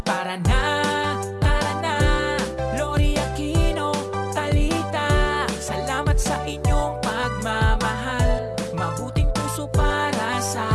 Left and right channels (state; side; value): identical; both; correlation 1.00